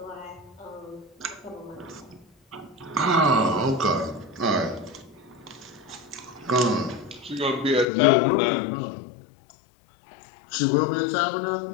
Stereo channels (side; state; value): right; drops out; at 7.9 s